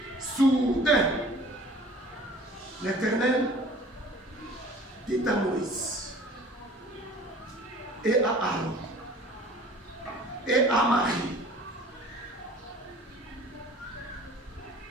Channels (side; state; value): both; normal; correlation 0.47